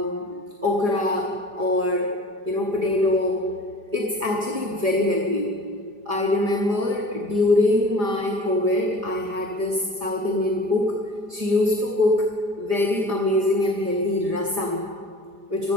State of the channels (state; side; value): late; left; 4.9 ms